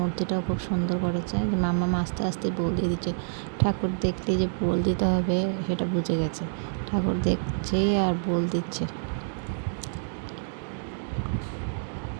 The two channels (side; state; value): left; silent; digital silence